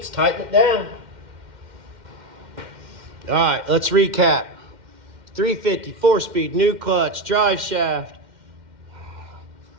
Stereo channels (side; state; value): left; late; 2.1 ms